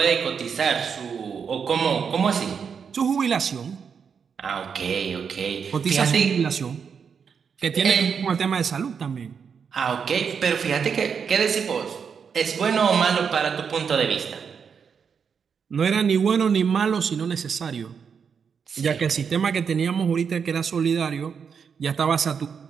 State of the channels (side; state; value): left; quieter; 6.6 dB